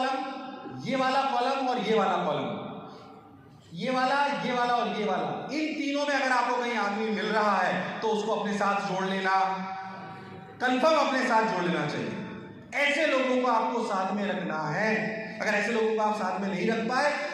ये वाला कॉलम और ये वाला कॉलम, ये वाला और ये वाला, इन तीनों में अगर आपको कहीं आदमी मिल रहा है तो उसको अपने साथ जोड़ लेना, कंफर्म अपने साथ जोड़ लेना चाहिए। ऐसे लोगों को आपको साथ में रखना है। अगर ऐसे लोगों को आप साथ में नहीं रख पाए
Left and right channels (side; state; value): both; identical; correlation 1.00